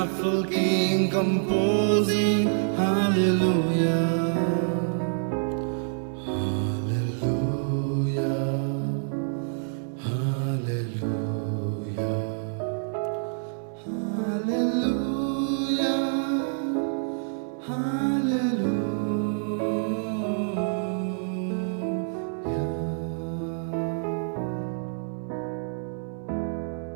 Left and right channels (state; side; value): silent; left; 58 dB below the other